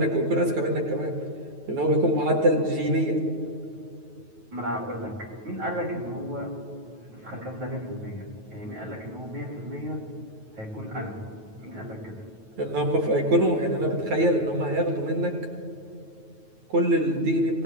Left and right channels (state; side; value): late; left; 9.2 ms